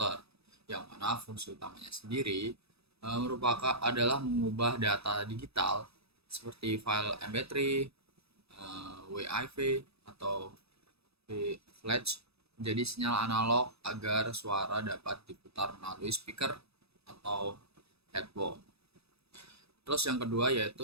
yang mana fungsi utamanya sendiri merupakan adalah mengubah data digital seperti file MP3, WAV, atau flash menjadi sinyal analog agar suara dapat diputar melalui speaker atau headphone. Terus yang kedua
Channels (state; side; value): late; left; 0.78 ms